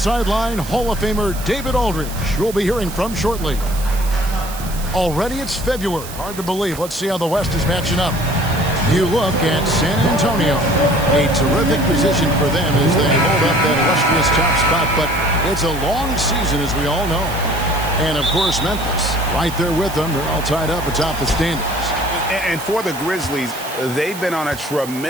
Hall of Famer David Aldridge, who we'll be hearing from shortly. Already it's February. Hard to believe. Let's see how the West is matching up. You look at San Antonio. A terrific position for them as they hold up that illustrious top spot. But it's a long season, as we all know. And, of course, Memphis, right there with them. They're all tied up atop the standings. And for the Grizzlies, they've been on a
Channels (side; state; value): right; noise; hiss, 13 dB below the sound